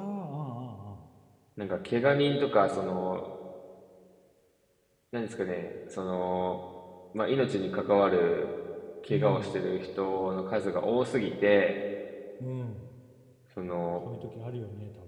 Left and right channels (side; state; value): both; identical; correlation 1.00